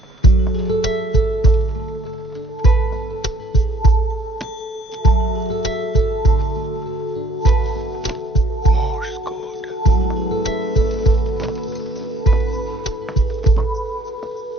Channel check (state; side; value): normal; both; correlation 0.59